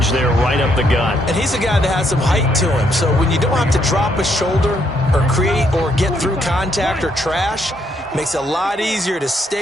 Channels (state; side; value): normal; both; correlation 0.73